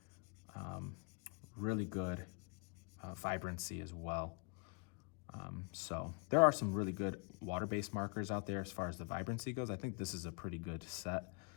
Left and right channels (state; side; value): quieter; right; 32.9 dB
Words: really good vibrancy as well. So there are some really good water-based markers out there as far as the vibrancy goes. I think this is a pretty good set